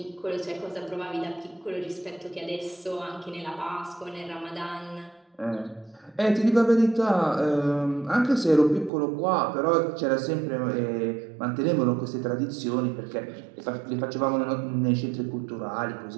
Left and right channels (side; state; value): left; drops out; at 8.9 s